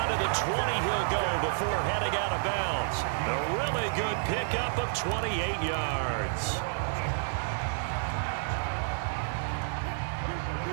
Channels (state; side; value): silent; left; 58 dB below the other